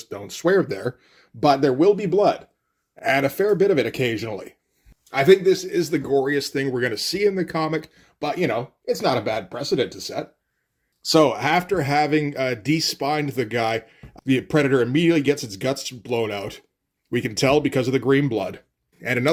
don't swear there. But there will be blood, and a fair bit of it occasionally. I think this is the goriest thing we're going to see in the comic, but, you know, it's not a bad precedent to set. So, after having de-spined the guy, the Predator immediately gets its guts blown out. We can tell because of the green blood. And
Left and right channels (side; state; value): both; identical; correlation 1.00